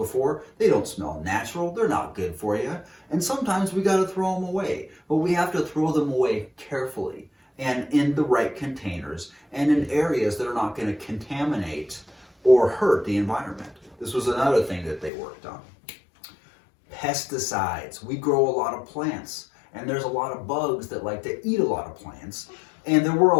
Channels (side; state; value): right; drops out; at 15.1 s